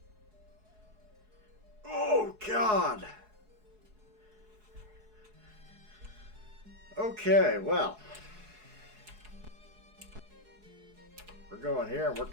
Oh, God! Okay, well. We're going here and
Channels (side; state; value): left; late; 4.7 ms